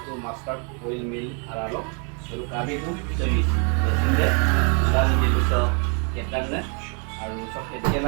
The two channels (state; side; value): quieter; left; 37.5 dB